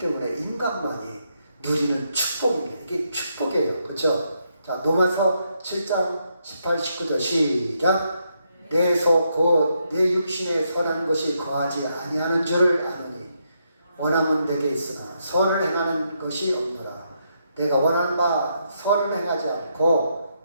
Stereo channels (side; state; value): both; inverted; correlation -0.78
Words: 인간만이 누리는 축복입니다. 이게 축복이에요. 그렇죠? 자, 로마서 7장 18, 19절 시작. 내 속 곧 내 육신에 선한 것이 거하지 아니하는 줄을 아노니 원함은 내게 있으나 선을 행하는 것이 없노라. 내가 원하는 바 선을 행하지 않고